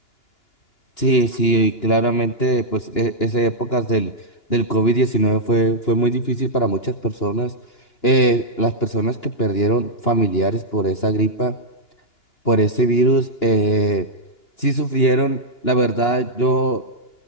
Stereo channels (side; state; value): right; late; 2.9 ms